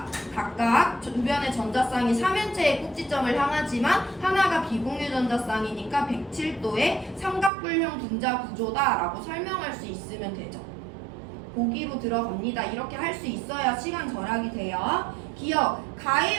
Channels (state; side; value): drops out; left; at 7.5 s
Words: 각각 주변의 전자쌍이 3면체의 꼭지점을 향하지만 하나가 비공유 전자쌍이니까 107도의 삼각불형 분자 구조다라고 설명할 수 있으면 되죠. 보기로 들어갑니다. 이렇게 할 수 있어야 시간 절약이 돼요. 기억,